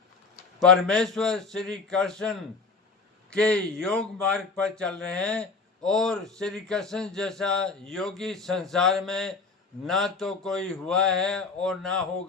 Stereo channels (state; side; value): quieter; right; 4.3 dB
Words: परमेश्वर श्री कृष्ण के योग मार्ग पर चल रहे हैं और श्री कृष्ण जैसा योगी संसार में ना तो कोई हुआ है और ना